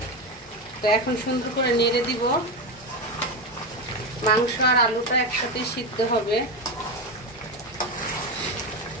তো এখন সুন্দর করে নেড়ে দিব। মাংস আর আলুটা একসাথে সিদ্ধ হবে।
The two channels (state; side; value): normal; both; correlation 0.15